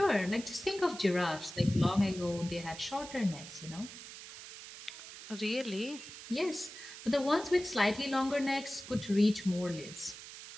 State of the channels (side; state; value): right; noise; hiss, 13 dB below the sound